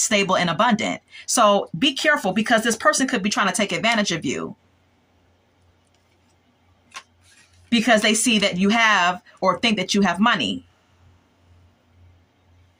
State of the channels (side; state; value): both; identical; correlation 1.00